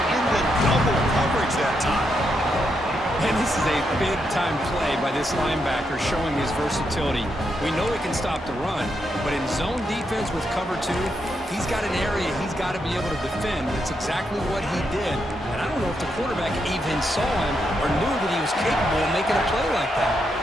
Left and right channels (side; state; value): both; normal; correlation 0.81